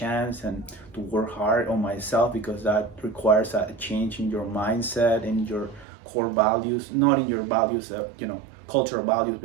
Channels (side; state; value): left; drops out; at 5.9 s